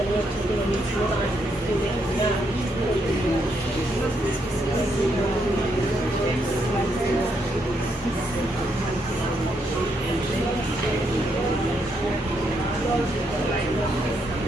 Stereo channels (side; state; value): both; normal; correlation 0.77